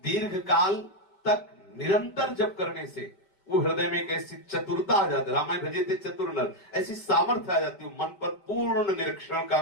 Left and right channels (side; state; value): right; late; 5.1 ms